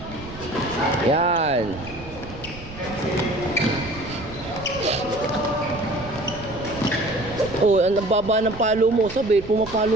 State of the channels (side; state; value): right; noise; rumble, 15 dB below the sound